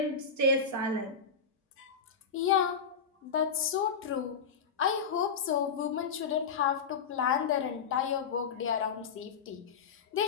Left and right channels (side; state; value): right; quieter; 5.8 dB